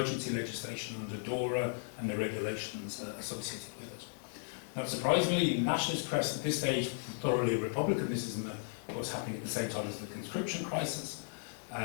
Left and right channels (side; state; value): right; silent; 54 dB below the other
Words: legislation under DORA and the regulations associated with it. Not surprisingly, the nationalist press at this stage, thoroughly Republican, this is of course happening at the same time as the conscription crisis,